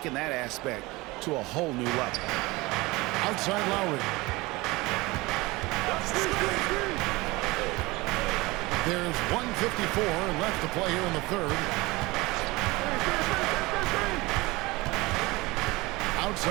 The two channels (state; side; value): quieter; left; 22.2 dB